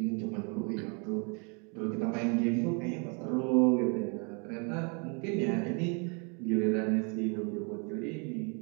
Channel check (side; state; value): left; quieter; 35.2 dB